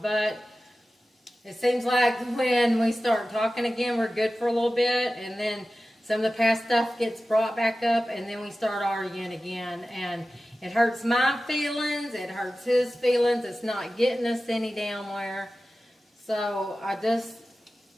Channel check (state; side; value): normal; both; correlation 0.95